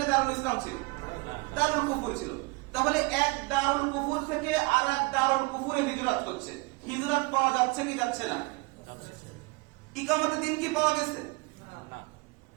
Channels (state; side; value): quieter; left; 26.0 dB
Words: দারুল ইসলাম ছিল? দারুল কুফর ছিল। তাহলে এক দারুল কুফর থেকে আর এক দারুল কুফরে হিজরত হচ্ছে। হিজরত পাওয়া যাচ্ছে কি যাচ্ছে না? ইকামতে দিন কি পাওয়া গেছে?